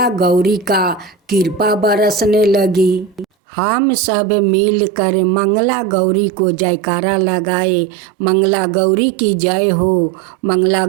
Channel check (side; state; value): left; drops out; at 3.2 s